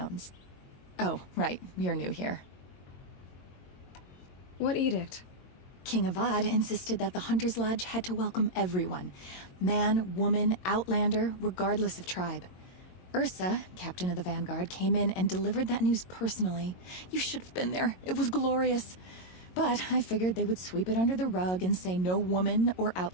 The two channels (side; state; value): right; late; 22 ms